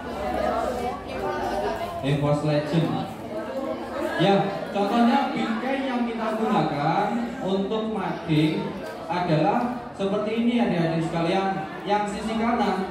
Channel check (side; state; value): both; identical; correlation 1.00